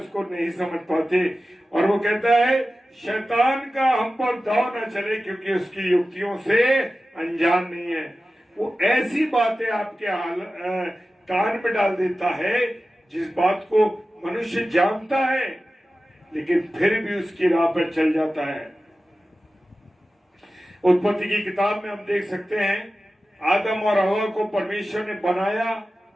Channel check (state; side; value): normal; both; correlation 0.95